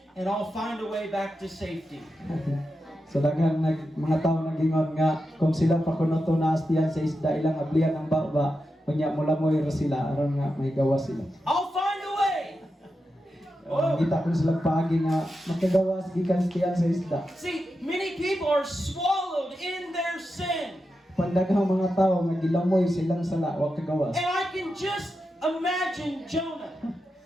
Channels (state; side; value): normal; both; correlation 0.89